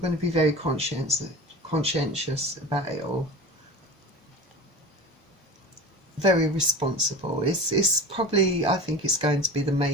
to be very conscientious about it all. Very responsible. It's probably, I think it's going to be the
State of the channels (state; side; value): normal; both; correlation 0.33